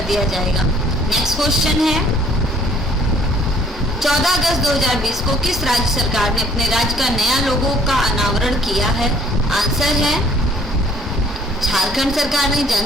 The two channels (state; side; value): normal; both; correlation 0.59